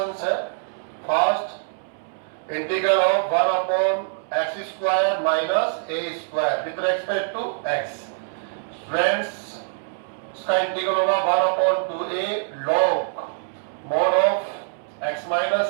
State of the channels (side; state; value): left; silent; 63 dB below the other